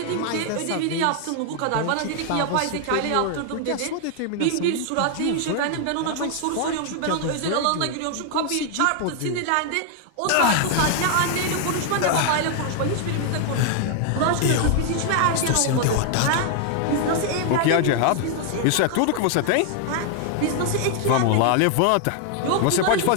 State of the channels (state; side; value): different; both; correlation 0.00